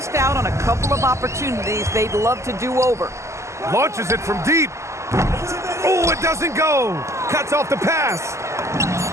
out on a couple of opportunities they'd love to do over. Launches it from deep. Oh, it doesn't go. Cuts off the pass.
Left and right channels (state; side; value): late; left; 0.14 ms